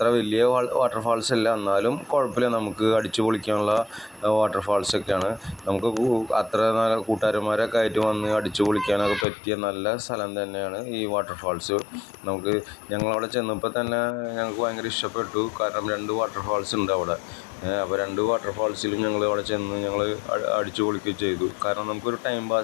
വലിയ വാട്ടർഫാൾസ് അല്ല, എന്നാലും കുഴപ്പമില്ല, നമുക്ക് അടിച്ചു പൊളിക്കാനുള്ള വാട്ടർഫാൾസൊക്കെയാണ്. നമുക്ക് അത്ര നല്ല കൂട്ടുകാരന്മാരൊക്കെ ആയിട്ട് വന്ന് അടിച്ചു പൊളിക്കാനൊക്കെ പറ്റിയ നല്ല സ്ഥലം തന്നെയാണ് ഈ വാട്ടർഫാൾസ്. ഞങ്ങളവിടെ ചെന്നപ്പോൾ തന്നെ ഞങ്ങൾക്ക് ഭയങ്കര ഇഷ്ടപ്പെട്ടു. കാരണം 2 വാട്ടർഫാൾസ് ഉണ്ട് അവിടെ. അപ്പോൾ 2 വാട്ടർഫാൾസിലും ഞങ്ങൾ അവിടെ ചെന്ന് ഞങ്ങൾ അടിച്ചു പൊളിക്കുകയും ചെയ്തു. കാരണം നമുക്കൊരു ടൈം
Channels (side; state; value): right; drops out; at 9.2 s